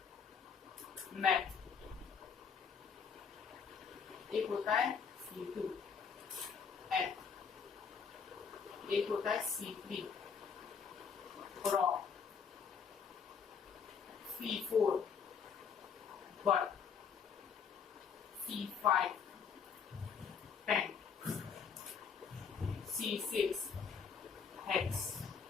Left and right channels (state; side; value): quieter; right; 6.3 dB